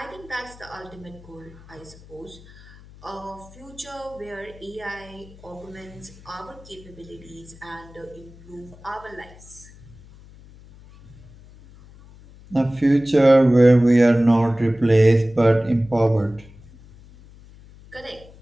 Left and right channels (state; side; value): noise; left; hum, 22 dB below the sound